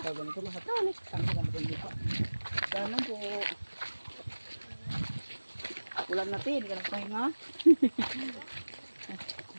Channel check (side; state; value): both; inverted; correlation -1.00